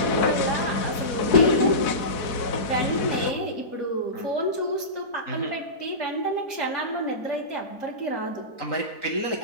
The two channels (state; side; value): late; right; 4.6 ms